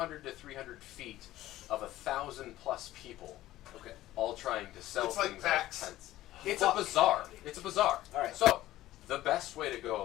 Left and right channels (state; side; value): quieter; right; 15.2 dB